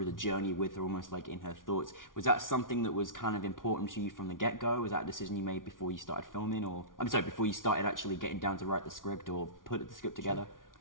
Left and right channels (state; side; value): late; right; 0.89 ms